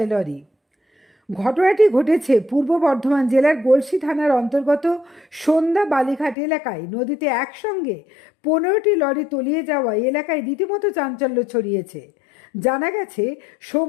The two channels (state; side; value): drops out; right; at 6.4 s